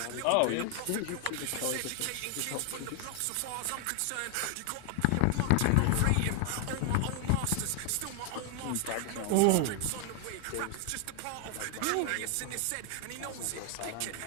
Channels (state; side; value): different; both; correlation 0.00